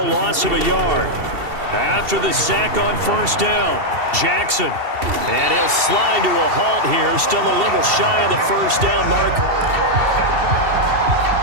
loss of a yard. After the sack on 1st down, Jackson. And he'll slide to a halt here. Still a little shy of the 1st down mark.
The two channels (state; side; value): late; left; 2.7 ms